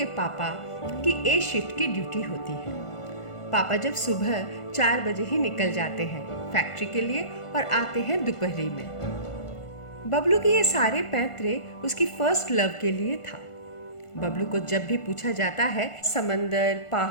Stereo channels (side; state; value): right; late; 1.5 ms